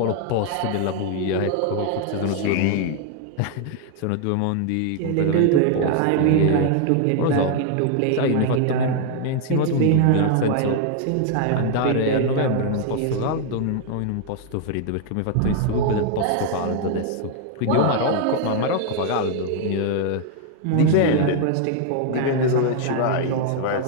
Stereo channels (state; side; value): different; both; correlation 0.00